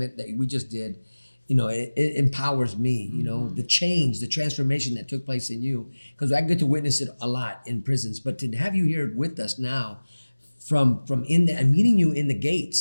that we just did, it empowers me. The change, the transformation that took place in you, because I get to witness it a lot in prisons. But to have you here with us now, from in the and meeting you in the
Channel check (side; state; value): both; inverted; correlation -1.00